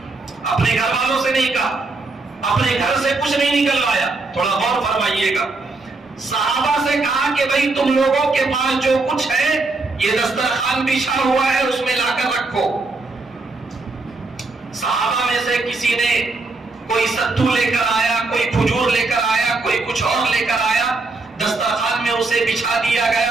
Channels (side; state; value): left; quieter; 3.5 dB